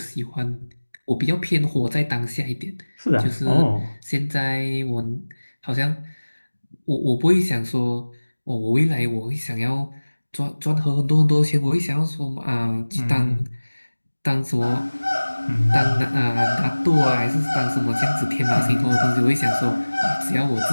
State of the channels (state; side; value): inverted; both; correlation -1.00